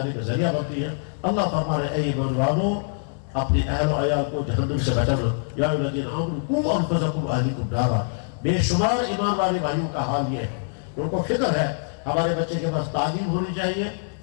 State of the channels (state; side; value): silent; right; 62 dB below the other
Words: کا ذریعہ بنتی ہے. اللہ فرما رہے اے ایمان والو اپنے اہل و عیال کو جہنم سے بچانا. یا الذین آمنوا قوا انفسکم واہلیکم نارا. بے شمار ایمان والے بھائیوں کا حال یہ ہے کہ ان کو فکر ہے ہمارے بچے کے پاس تعلیم ہونی چاہیے